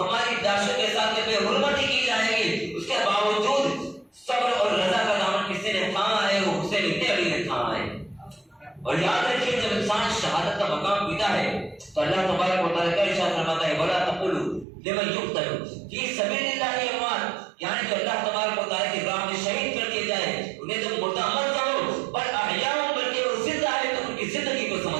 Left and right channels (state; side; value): drops out; left; at 14.7 s